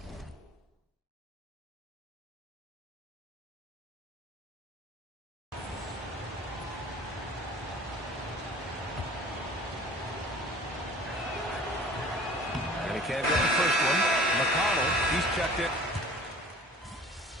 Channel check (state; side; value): normal; both; correlation 0.46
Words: And he can't get the first one. McConnell, he's checked it.